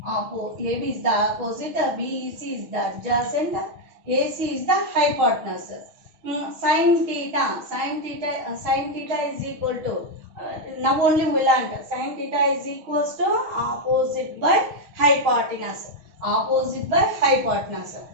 AB is the opposite, BEC is the adjacent, AC is the hypotenuse. Sin theta is equal to, now only we learned, sin theta is equals to opposite by hypotenuse. opposite by hypotenuse.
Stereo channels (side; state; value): left; late; 6.4 ms